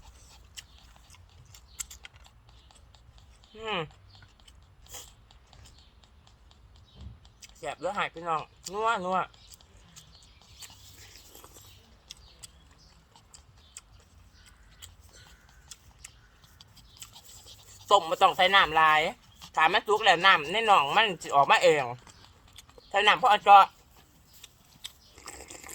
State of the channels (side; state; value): both; identical; correlation 1.00